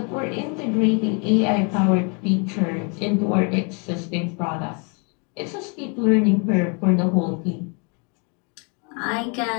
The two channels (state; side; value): quieter; right; 35.2 dB